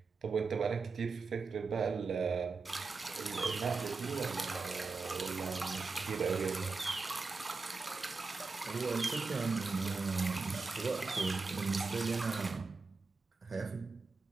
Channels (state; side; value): quieter; left; 4.3 dB